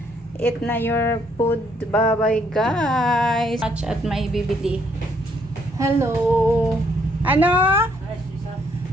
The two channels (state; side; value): normal; both; correlation 0.69